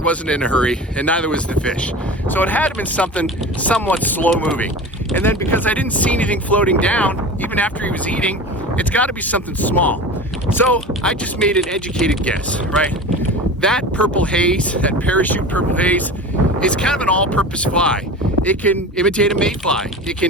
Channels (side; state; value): both; normal; correlation 0.33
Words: wasn't in a hurry, and neither was the fish. So it had to have been something somewhat slow moving. And then because I didn't see anything floating down, even after he was eating, it's gotta be something small. So I just made an educated guess, right? That purple haze, that parachute purple haze, is kind of an all-purpose fly. It can imitate a mayfly, it